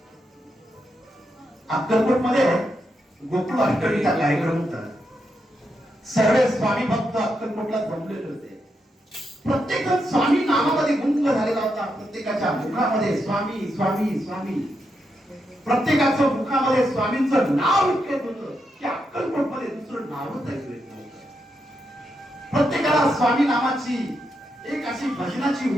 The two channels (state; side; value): normal; both; correlation 0.83